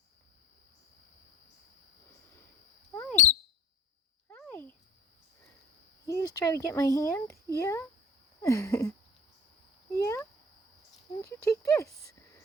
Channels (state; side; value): normal; both; correlation 0.44